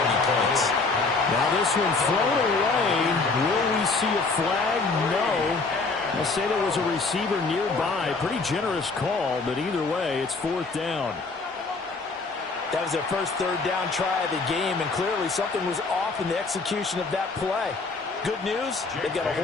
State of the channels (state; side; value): quieter; right; 4.0 dB